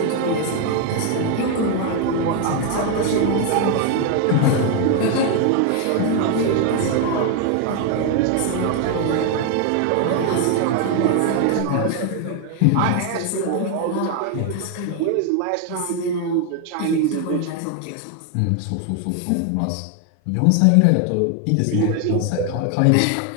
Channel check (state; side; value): different; both; correlation 0.01